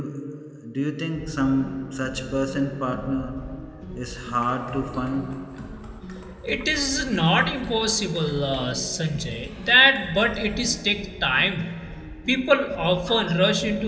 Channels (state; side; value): identical; both; correlation 1.00